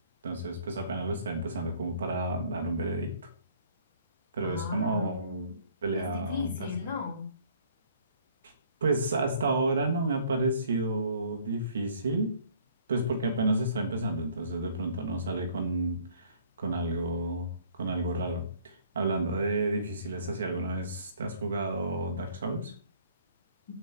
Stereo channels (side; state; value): both; inverted; correlation -0.57